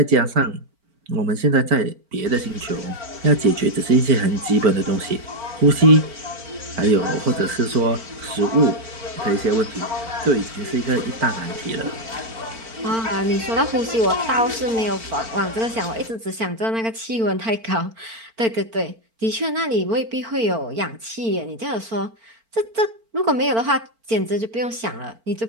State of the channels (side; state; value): left; late; 4.4 ms